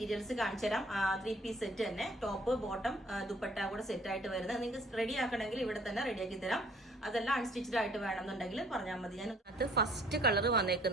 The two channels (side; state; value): both; normal; correlation 0.58